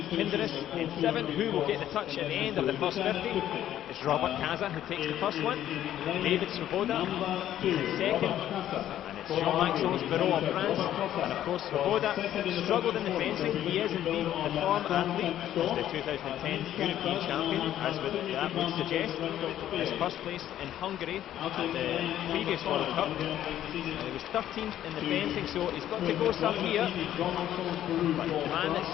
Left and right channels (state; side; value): quieter; right; 11.9 dB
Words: Kinderis in 7. Who will get the touch at the end of the first 50? It's Robert Kaza who takes the first one. David Svoboda, he's in 2nd, and It's Jean-Maxence Barrault of France, and of course Svoboda struggled in the fencing. He is indeed the form athlete as the 2010 European champion, as that would suggest. His first place in Hungary at the previous World Cup, and he was 13th in the fencing, so he's got to go some here. But the man that's